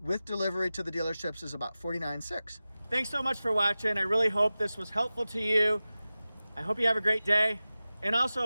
With delivery to the dealerships is about $49,600. Thanks so much for watching. I really hope this was helpful to you. I hope you have a great day. And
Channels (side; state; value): both; inverted; correlation -0.96